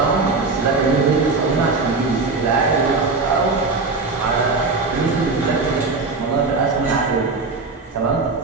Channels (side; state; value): left; quieter; 3.9 dB